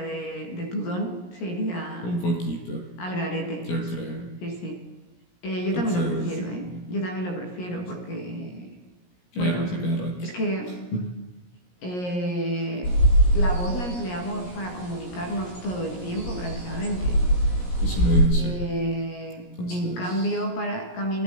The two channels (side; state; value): right; late; 17 ms